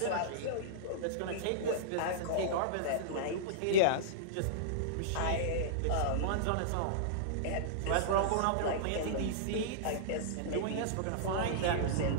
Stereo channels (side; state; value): both; different; correlation -0.02